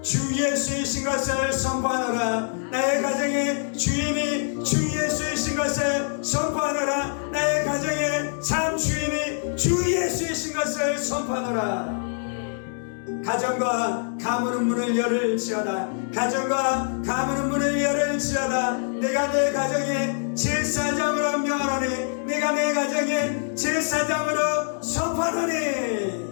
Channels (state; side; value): silent; right; 62 dB below the other